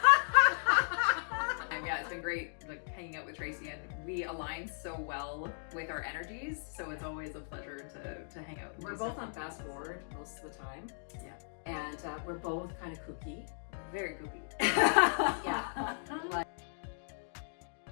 Yeah, it's been great like hanging out with Tracy, and we align so well with our energies, so it's always a pleasure to hang out. We're both on fast forward most of the time. Yeah. And we're both kind of kooky. Very kooky. Yeah.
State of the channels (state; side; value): silent; right; digital silence